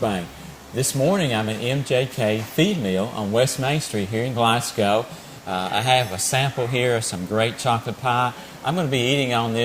This morning I'm at M.J.K. feed mill on West Main Street here in Glasgow. I have a sample here of some great chocolate pie. I'm going to be eating on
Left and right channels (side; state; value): both; identical; correlation 1.00